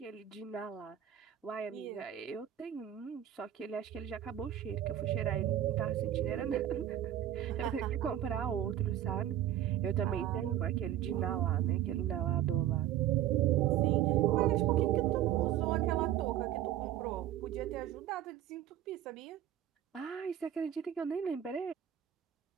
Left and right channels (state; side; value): quieter; left; 11.3 dB